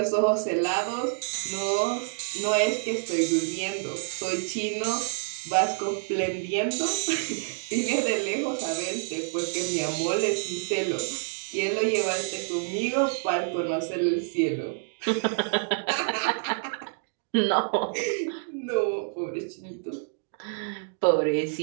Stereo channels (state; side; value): silent; left; digital silence